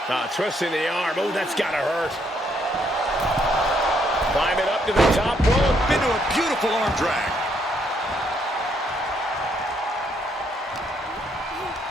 Twisting the arm. Oh, that's got to hurt. Climbing up to the top rope. Into a beautiful arm drag.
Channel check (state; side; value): normal; both; correlation 0.72